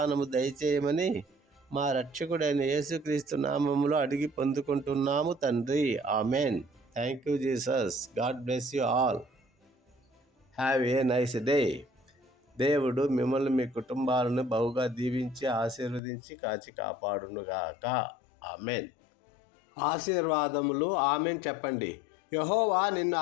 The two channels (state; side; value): drops out; right; at 16.0 s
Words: దయచేయమని మా రక్షకుడైన యేసుక్రీస్తు నామములో అడిగి పొందుకుంటున్నాము తండ్రి. Amen. Thank you Jesus. God bless you all. Have a nice day. దేవుడు మిమ్మల్ని, మీ కుటుంబాలను బహుగా దీవించి ఆశీర్వదించి కాచి కాపాడునుగాక. ఆమెన్. ఆశీర్వాదములు. ఆమెన్ చెప్పండి. యెహోవా నిన్ను